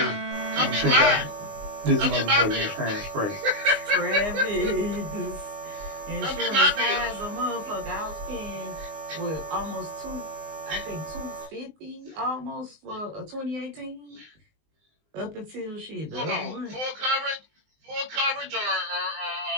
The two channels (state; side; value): late; left; 19 ms